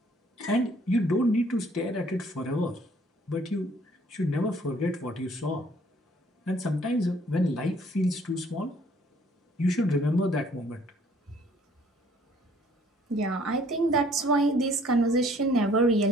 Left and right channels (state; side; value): normal; both; correlation 0.60